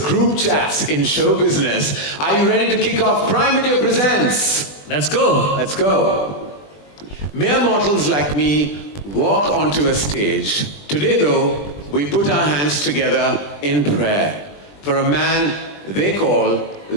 group chats in show business. Are you ready to kick off Prime Video Presents? Let's go. Let's go. Mere mortals like me walk onto a stage. Today, though, we put our hands together in prayer for a man they call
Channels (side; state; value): right; late; 20 ms